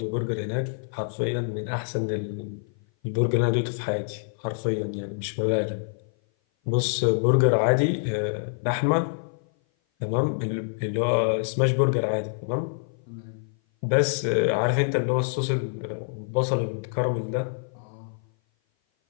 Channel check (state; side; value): silent; right; 56 dB below the other